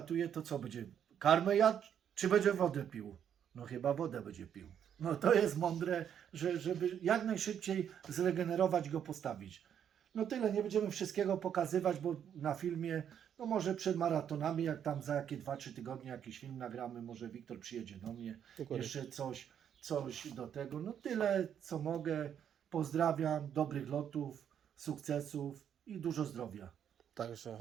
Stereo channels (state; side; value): quieter; left; 8.9 dB